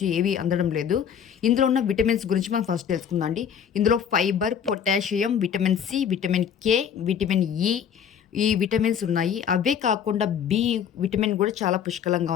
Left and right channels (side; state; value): right; quieter; 8.0 dB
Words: ఏవి అందడం లేదు. ఇందులో ఉన్న విటమిన్స్ గురించి మనం ఫస్ట్ తెలుసుకుందాం అండి. ఇందులో fibre, potassium, vitamin C, vitamin K, vitamin E, ఈ విటమిన్స్ ఉన్నాయి. అవే కాకుండా బి విటమిన్ కూడా చాలా పుష్కలంగా